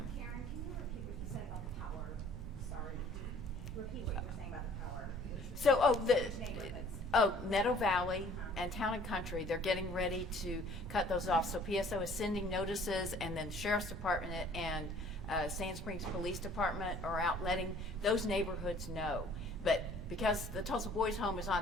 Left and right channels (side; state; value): both; normal; correlation 0.54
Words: Karen, can you repeat what you said about the power? Sorry. Repeat what you were saying about the power. So, Neighborhoods. Meadow Valley and Town and Country, they're getting ready to cut those off. So PSO is sending notices, and then the Sheriff's Department and Sand Springs Police Department are out letting those neighborhoods know. But because the Tulsa Boys Home is